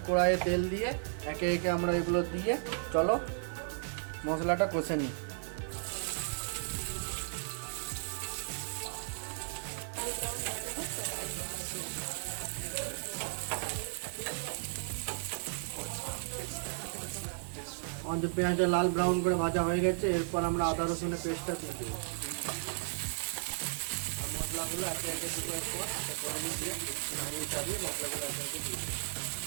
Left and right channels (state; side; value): silent; left; digital silence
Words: কড়াইয়ে তেল দিয়ে একে একে আমরা এগুলো দিয়ে চলো মশলাটা কষে নিই। আমাদের পেঁয়াজটা লাল ব্রাউন করে ভাজা হয়ে গেছে। এরপর আমরা আদা রসুনের পেস্টটা দিয়ে দেবো আর মশলাগুলো একে একে দেবো। এরপর কড়াইয়ে দিয়ে নাড়িয়ে চাড়িয়ে মশলাগুলো একে একে দিয়ে দেবো।